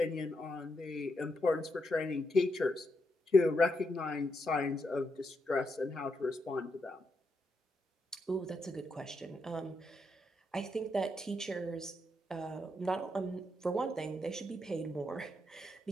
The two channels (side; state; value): both; normal; correlation 0.82